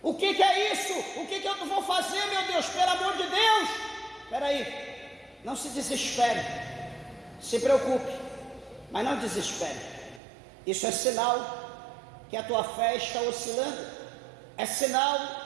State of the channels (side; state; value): left; drops out; at 10.2 s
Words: O que é isso? O que eu vou fazer, meu Deus? Pelo amor de Deus! Espera aí, não se desespere, se preocupe, mas não desespere. Isso é sinal que a tua fé está oscilando. É sinal